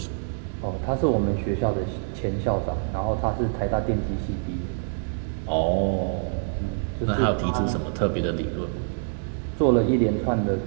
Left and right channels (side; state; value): left; silent; digital silence